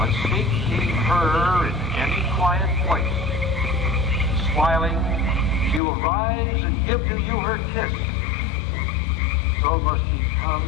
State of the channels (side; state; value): right; drops out; at 5.8 s